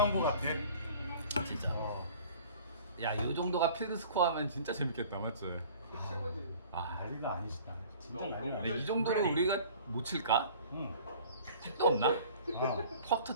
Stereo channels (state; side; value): inverted; both; correlation -0.48